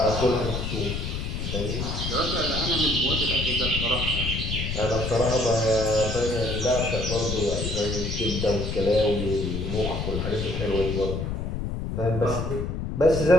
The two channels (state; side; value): noise; left; rumble, 3 dB below the sound